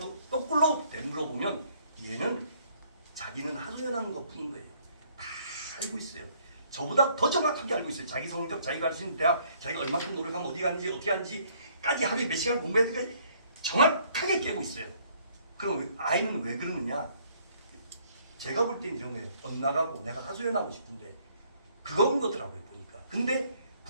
거꾸로 되물어보면 얘는 자기는 하소연하는 것뿐인 거예요. 다 알고 있어요. 저보다 더 정확하게 알고 있어요. 자기 성적, 자기가 할 수 있는 대학, 자기가 얼마큼 노력하면 어디 갔는지 어떻게 하는지까지 하루에 몇 시간 공부해야 될까지 정확하게 깨고 있어요. 그럼 아이는 왜 그러느냐? 제가 볼 때는 이런 거예요. 엇나가고 내가 하소연하고 싶은데 그건 거더라고요 보니까. 근데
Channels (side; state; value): both; inverted; correlation -0.63